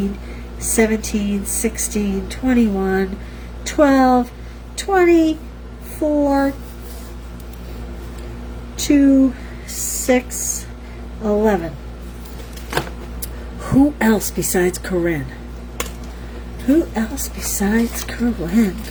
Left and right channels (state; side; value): identical; both; correlation 1.00